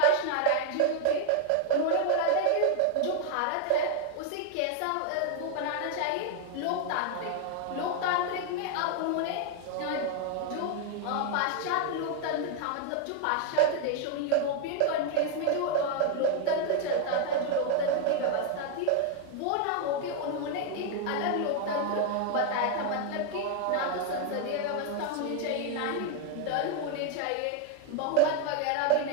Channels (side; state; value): both; different; correlation 0.00